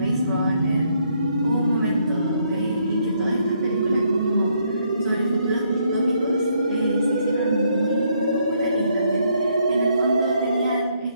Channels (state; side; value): inverted; both; correlation -0.72